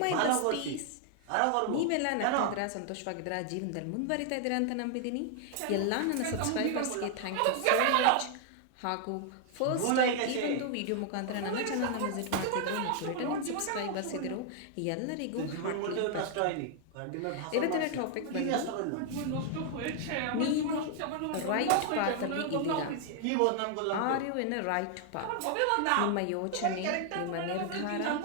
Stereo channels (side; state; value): both; different; correlation 0.00